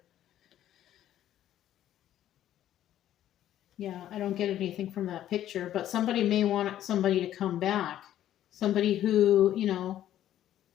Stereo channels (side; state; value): right; quieter; 12.1 dB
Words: Yeah, I don't get anything from that picture, but somebody may want somebody to come back. Somebody who,